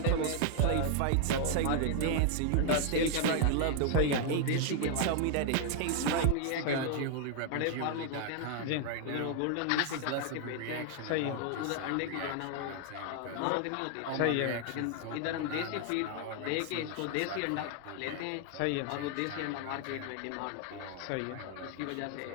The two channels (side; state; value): both; different; correlation 0.00